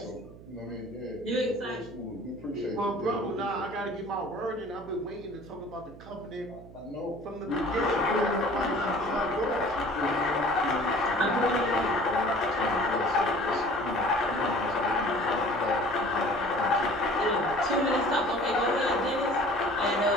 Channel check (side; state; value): right; noise; hum, 18 dB below the sound